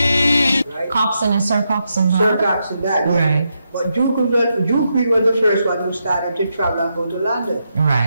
Right? Coxsone is Sir Coxsone, Sir Coxsone died. Right. But Duke Reid was the first one who started to travel and go to London.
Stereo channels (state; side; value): inverted; both; correlation -0.83